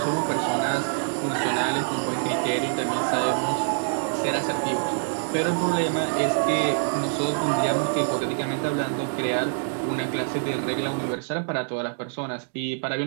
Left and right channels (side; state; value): left; silent; digital silence